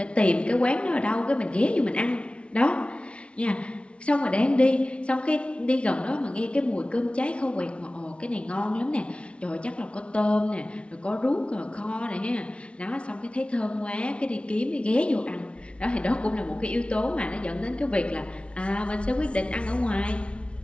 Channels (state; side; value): late; right; 0.060 ms